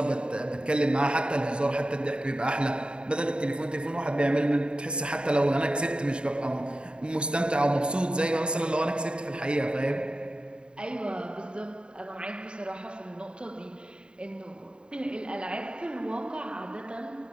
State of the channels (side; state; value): left; late; 0.052 ms